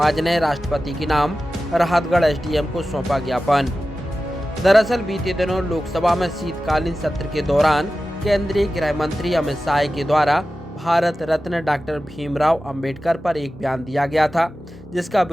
ने राष्ट्रपति के नाम राहतगढ़ एसडीएम को सौंपा ज्ञापन। दरअसल बीते दिनों लोकसभा में शीतकालीन सत्र के दौरान केंद्रीय गृह मंत्री अमित शाह के द्वारा भारत रत्न डॉक्टर भीमराव अंबेडकर पर एक बयान दिया गया था, जिसका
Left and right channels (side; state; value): both; normal; correlation 0.94